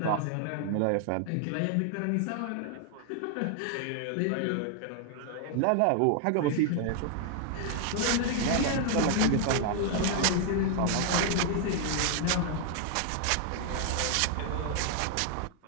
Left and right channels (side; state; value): both; different; correlation 0.00